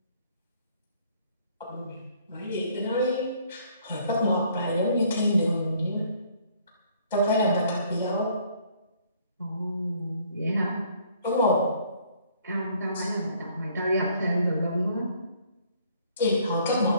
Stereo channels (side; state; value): both; inverted; correlation -0.61